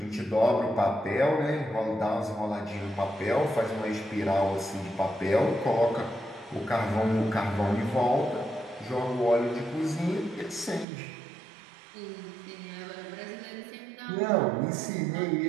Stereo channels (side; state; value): left; drops out; at 10.9 s